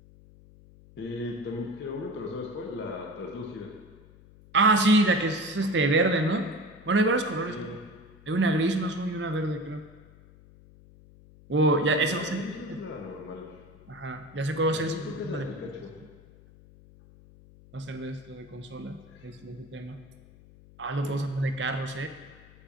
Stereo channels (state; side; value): noise; left; hum, 23 dB below the sound